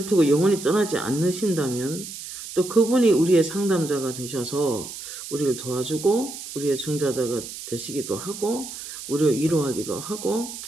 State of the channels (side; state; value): right; noise; hiss, 11 dB below the sound